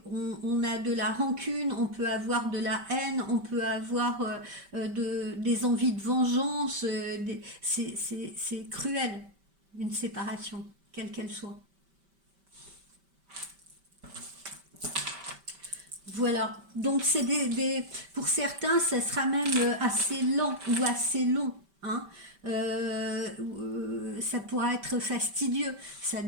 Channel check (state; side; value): late; left; 5.1 ms